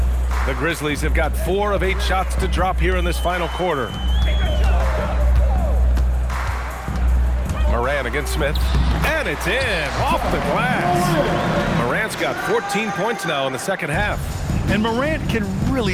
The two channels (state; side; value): identical; both; correlation 1.00